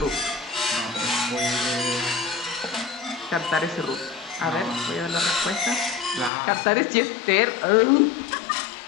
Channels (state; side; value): drops out; right; at 6.3 s